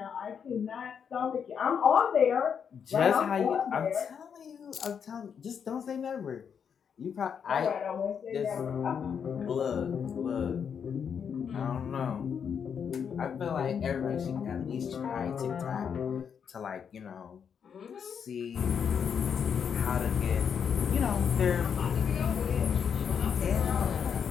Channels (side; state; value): right; quieter; 7.2 dB